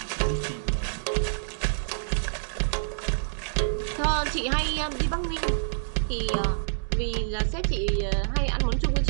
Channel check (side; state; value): left; silent; digital silence